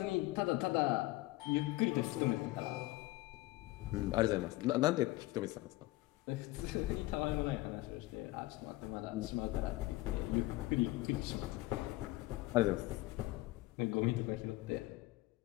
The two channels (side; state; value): right; quieter; 19.2 dB